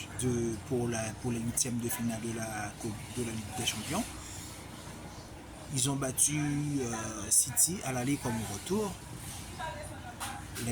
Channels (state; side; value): identical; both; correlation 1.00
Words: pour les huitièmes de finale de la Ligue des Champions. Ils ont battu City à l'aller comme au retour.